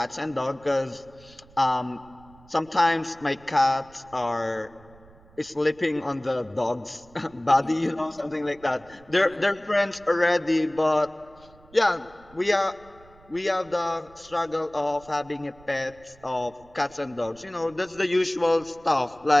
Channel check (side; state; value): right; noise; rumble, 25 dB below the sound